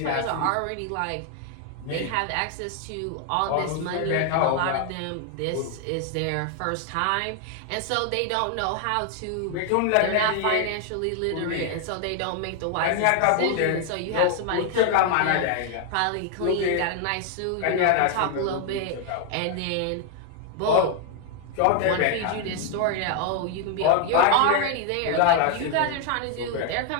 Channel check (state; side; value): different; both; correlation 0.00